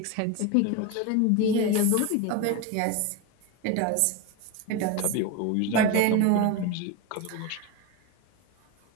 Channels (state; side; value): different; both; correlation 0.03